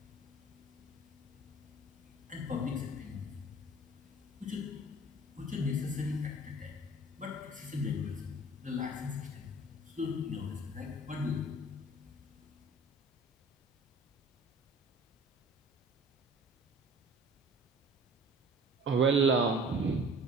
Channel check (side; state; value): both; normal; correlation 0.46